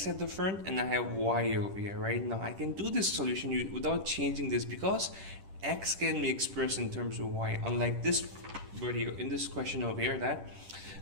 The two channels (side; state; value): left; late; 10 ms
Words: at the front and I have y over here, right? Now I can do this solution without changing this because x can be expressed in terms of y, unlike this video in this question over here that